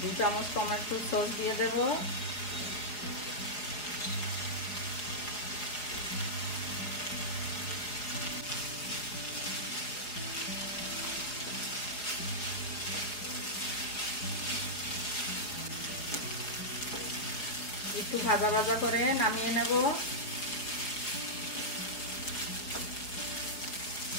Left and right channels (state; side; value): late; right; 4.9 ms